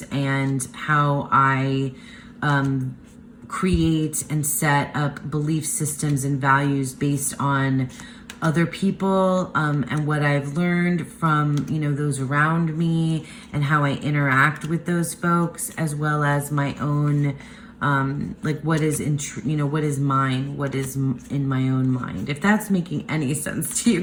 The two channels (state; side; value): identical; both; correlation 1.00